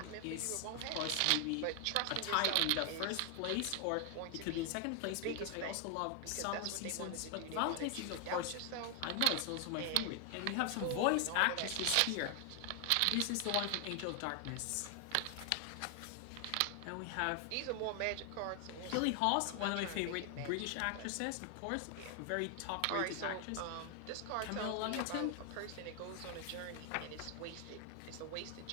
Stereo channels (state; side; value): different; both; correlation 0.00